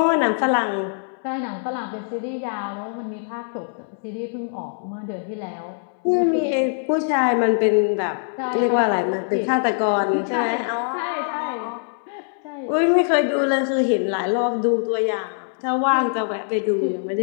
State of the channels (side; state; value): right; silent; 64 dB below the other